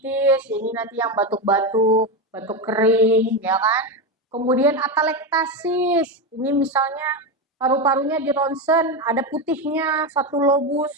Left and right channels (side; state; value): both; normal; correlation 0.14